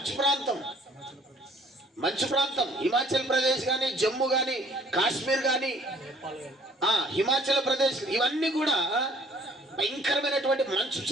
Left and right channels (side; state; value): both; normal; correlation 0.57